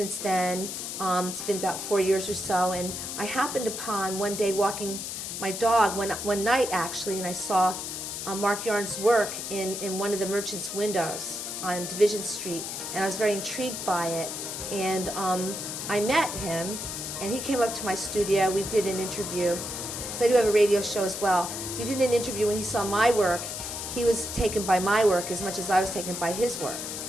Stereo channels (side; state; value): left; noise; hiss, 6 dB below the sound